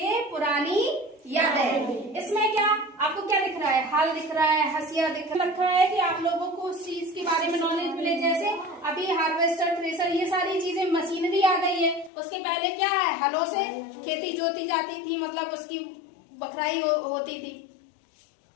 पुरानी यादें। इसमें क्या आपको क्या दिख रहा है, हाल दिख रहा है, हंसिया दिख रखा है कि आप लोगों को उस चीज के बारे में नॉलेज मिले। जैसे अभी हार्वेस्टर, थ्रेसर, ये सारी चीजें मशीनरी आ गई है। उसके पहले क्या है, हलों से खेती जोती जाती थी, मतलब उसकी बखराई होती थी,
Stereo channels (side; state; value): right; drops out; at 12.1 s